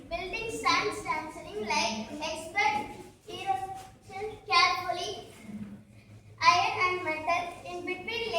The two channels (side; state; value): both; identical; correlation 1.00